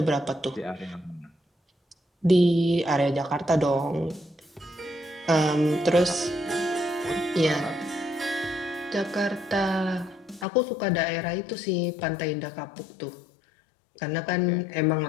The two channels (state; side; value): drops out; right; at 10.5 s